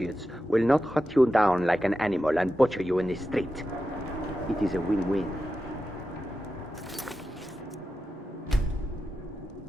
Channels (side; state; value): both; normal; correlation 0.91